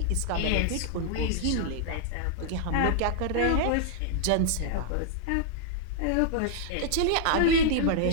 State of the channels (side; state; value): both; different; correlation -0.01